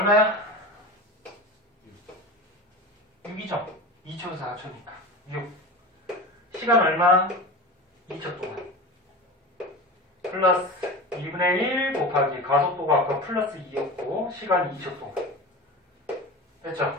6이죠? 2초에서 4초니까. 6. 시간 얼마? 2초 동안. 플러스 2분의 1 곱하기 가속도가 아까 플러스 2였고 시간이 2초 동안.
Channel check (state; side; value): normal; both; correlation 0.30